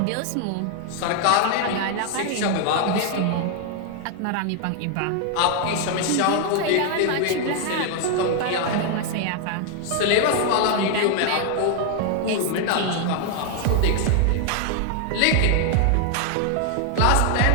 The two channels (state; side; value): different; both; correlation 0.00